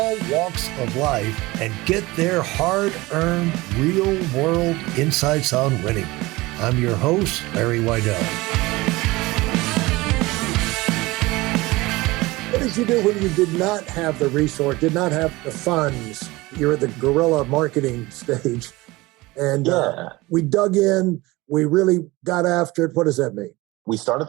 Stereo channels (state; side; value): quieter; left; 21.0 dB